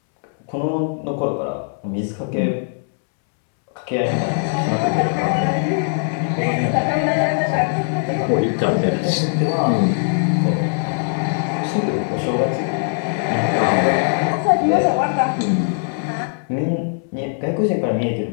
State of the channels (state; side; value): silent; right; 66 dB below the other